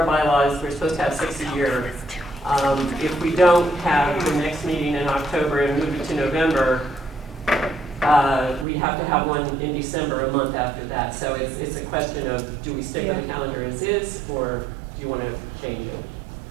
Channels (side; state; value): left; drops out; at 8.7 s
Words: bylaws, we're supposed to have 6 a year. If we don't have the next meeting in October and move it to November, we have to have one in December, a month after that. So it's a question of, do we stick with the calendar as is, or do you want to change it?